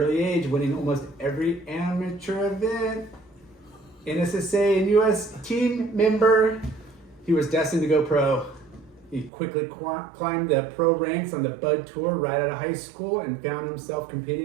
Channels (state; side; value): drops out; left; at 9.3 s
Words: age, winning almost every amateur event. NSSA and USA Team member. He was destined to go pro. He quickly climbed the pro ranks on the Bud Tour right out of high school and found himself